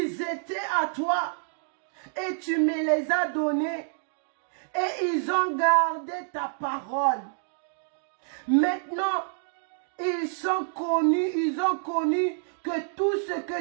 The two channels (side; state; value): left; silent; digital silence